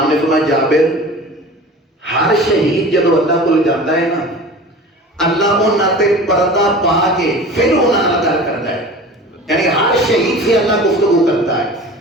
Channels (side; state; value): both; normal; correlation 0.38